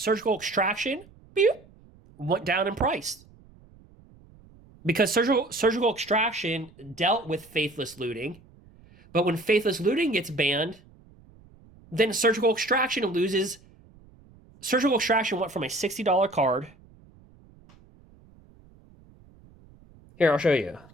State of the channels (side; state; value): right; noise; rumble, 26 dB below the sound